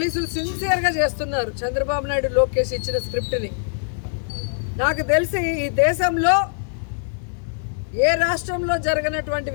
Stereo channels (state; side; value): silent; right; digital silence